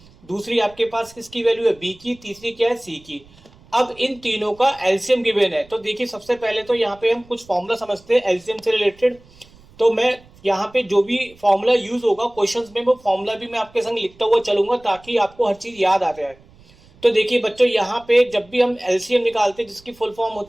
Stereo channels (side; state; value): right; noise; rumble, 26 dB below the sound